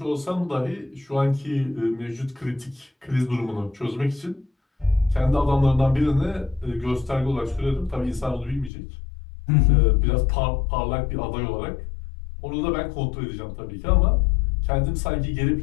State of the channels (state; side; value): drops out; right; at 8.7 s